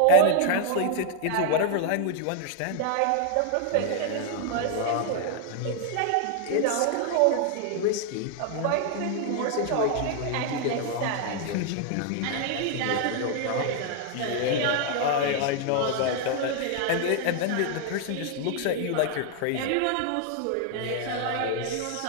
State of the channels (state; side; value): different; both; correlation 0.00